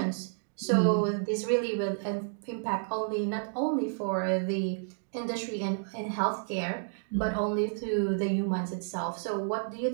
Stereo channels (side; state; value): left; silent; digital silence